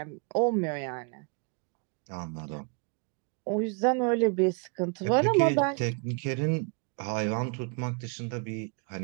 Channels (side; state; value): left; quieter; 35.1 dB